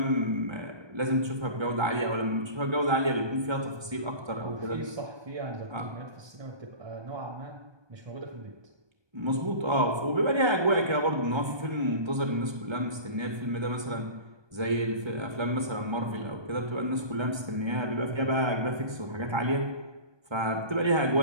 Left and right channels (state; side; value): late; left; 1.2 ms